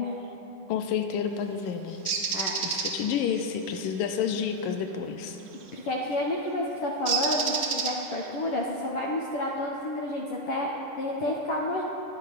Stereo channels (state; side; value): late; right; 9.5 ms